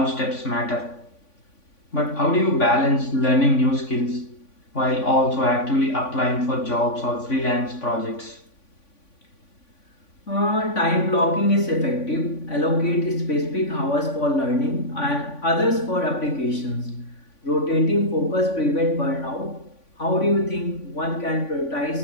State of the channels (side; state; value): right; late; 3.5 ms